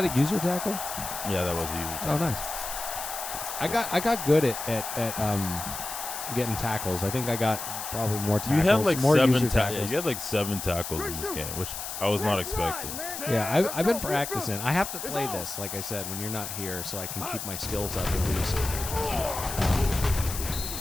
a user tackle? Yeah, that was a user tackle. Oh, nice. I got good at getting tackles. I think I got probably more tackles. You had like more 7 user tackles. tackles. You had like 7 tackles in this game, which I was not expecting. Yeah, I've been practicing. I have to play this, like I said, when you're not here, so I can keep my skills up at least.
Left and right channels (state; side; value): noise; left; hiss, 7 dB below the sound